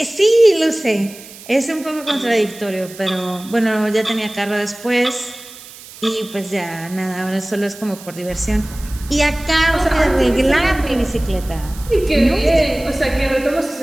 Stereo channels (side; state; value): right; noise; hiss, 18 dB below the sound